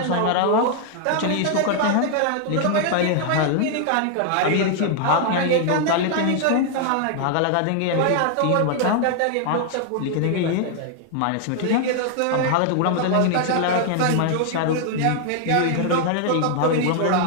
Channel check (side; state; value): both; different; correlation 0.00